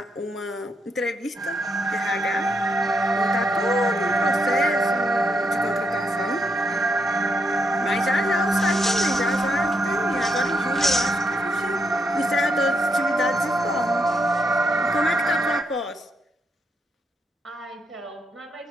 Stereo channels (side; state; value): both; normal; correlation 0.78